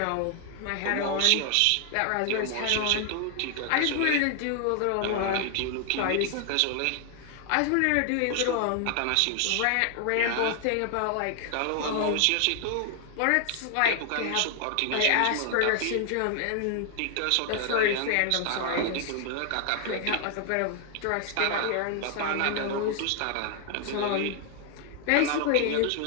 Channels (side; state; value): both; different; correlation 0.00